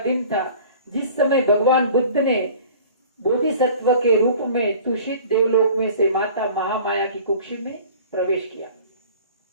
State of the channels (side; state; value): both; inverted; correlation -0.46